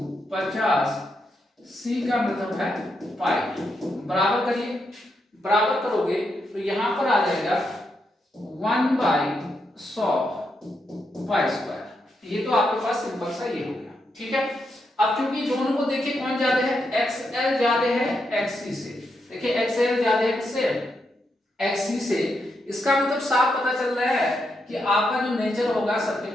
50, सी का मतलब है पाई। बराबर करिए, बराबर करोगे तो यहां पर आ जाएगा 1/100 पाई स्क्वायर। ये तो आपके पास सिंपल सा ये हो गया। ठीक है, अब क्योंकि दोनों को देखिए कौन ज्यादा है, एक्सएल ज्यादा है एक्ससी से। देखिए एक्सएल ज्यादा है किससे, एक्ससी से। इसका मतलब साफ पता चल रहा है कि आपका जो नेचर होगा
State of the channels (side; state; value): both; normal; correlation 0.82